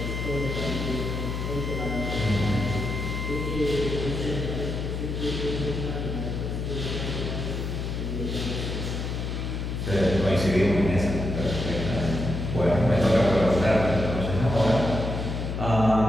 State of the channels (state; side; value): noise; left; hum, 3 dB below the sound